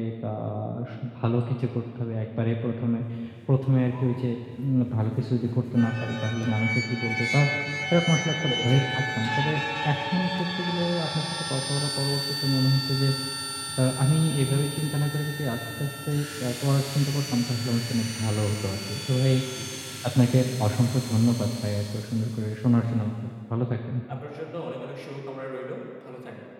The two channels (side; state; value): both; identical; correlation 1.00